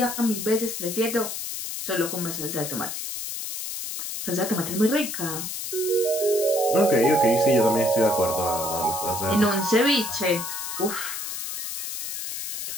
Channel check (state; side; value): noise; left; hiss, 5 dB below the sound